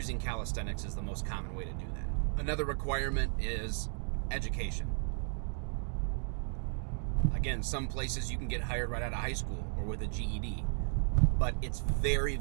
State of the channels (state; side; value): silent; left; 55 dB below the other